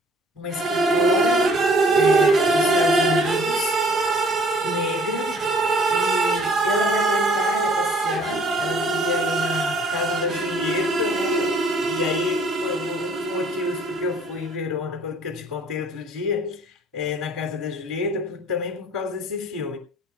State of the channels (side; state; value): both; normal; correlation 0.56